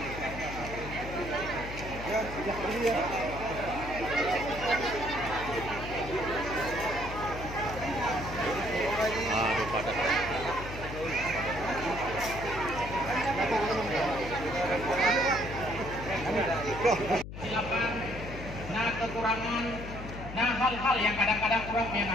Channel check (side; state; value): left; noise; hum, 9 dB below the sound